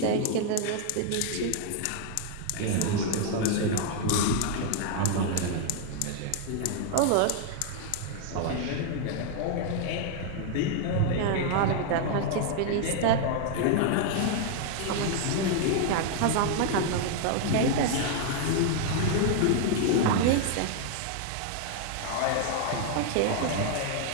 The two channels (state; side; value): different; both; correlation 0.00